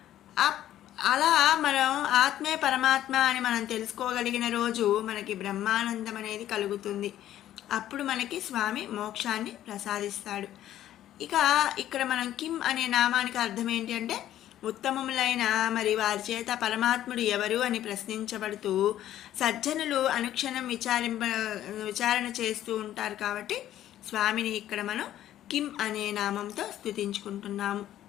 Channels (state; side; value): quieter; right; 12.4 dB